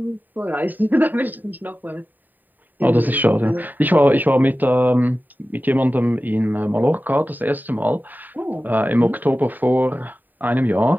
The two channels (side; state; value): left; late; 0.088 ms